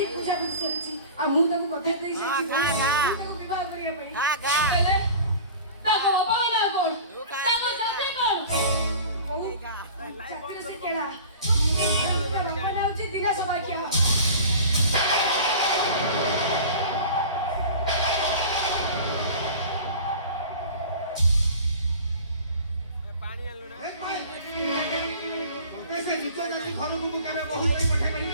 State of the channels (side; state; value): both; inverted; correlation -0.39